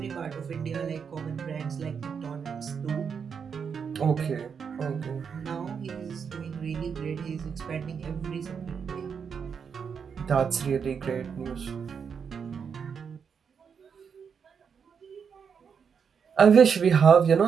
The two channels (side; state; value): left; quieter; 6.6 dB